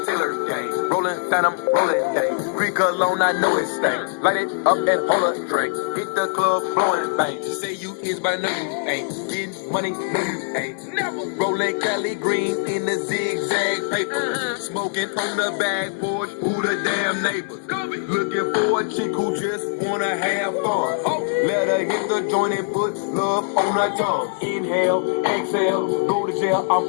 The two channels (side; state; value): right; silent; digital silence